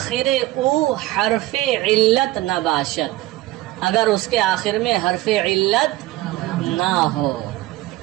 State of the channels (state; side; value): quieter; left; 17.3 dB